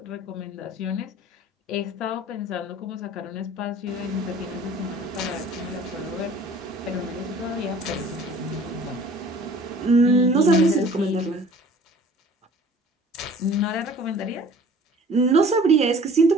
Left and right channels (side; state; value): both; normal; correlation 0.49